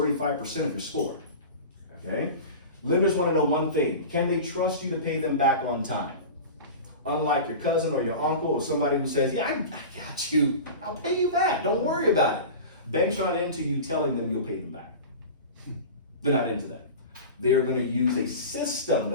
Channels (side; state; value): both; inverted; correlation -0.32